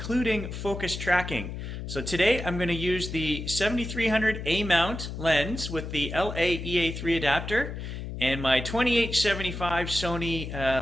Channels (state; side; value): noise; left; hum, 7 dB below the sound